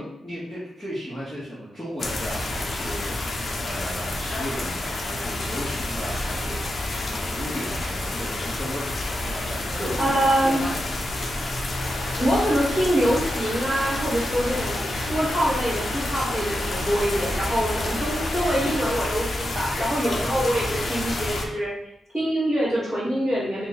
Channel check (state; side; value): normal; both; correlation 0.88